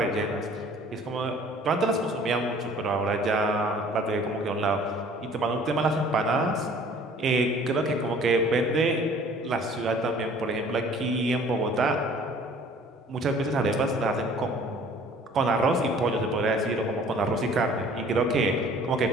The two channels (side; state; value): both; normal; correlation 0.52